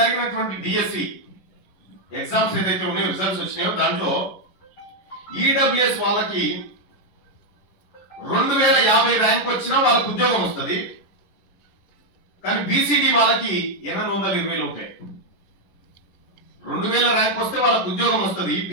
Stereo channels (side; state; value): right; late; 11 ms